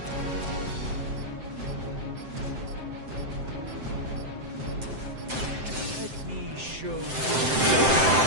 Let me show you.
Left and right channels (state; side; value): late; left; 7.7 ms